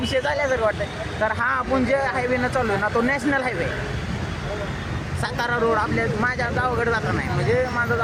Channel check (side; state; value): both; identical; correlation 1.00